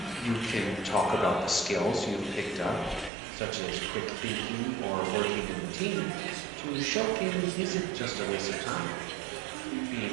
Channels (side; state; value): left; drops out; at 3.1 s